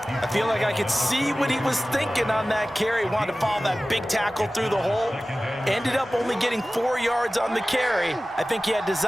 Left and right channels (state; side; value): normal; both; correlation 0.97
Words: I feel like I could see what he was thinking on that carry. Wanted to follow that big tackle through the hole. Ended up only getting 4 yards on the carry. I think he had